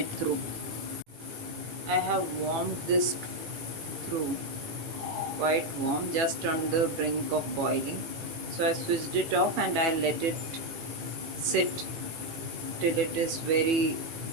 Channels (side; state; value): left; late; 18 ms